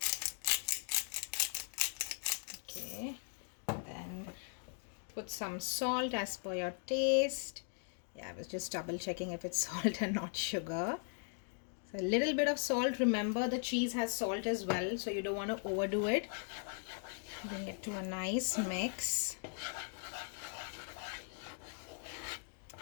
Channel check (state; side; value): silent; right; 52 dB below the other